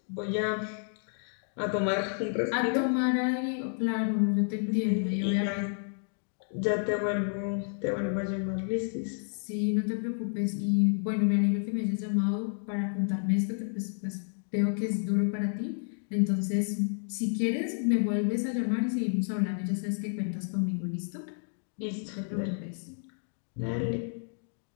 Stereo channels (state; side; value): silent; right; 57 dB below the other